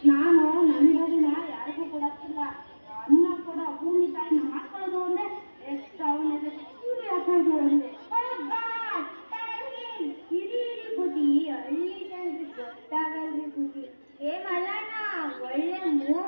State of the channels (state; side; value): inverted; both; correlation -1.00